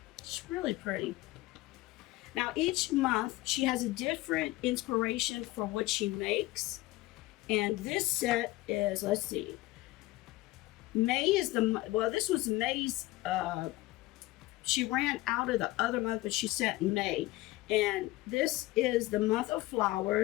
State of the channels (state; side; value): quieter; right; 18.7 dB